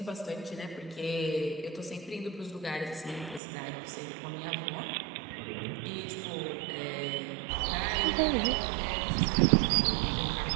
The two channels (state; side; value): drops out; left; at 3.4 s